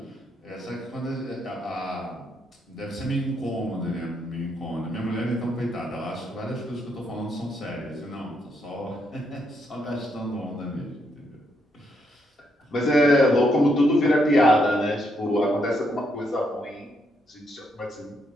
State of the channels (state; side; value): normal; both; correlation 0.77